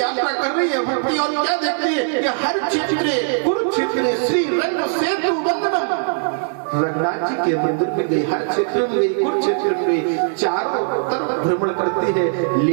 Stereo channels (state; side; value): silent; left; 59 dB below the other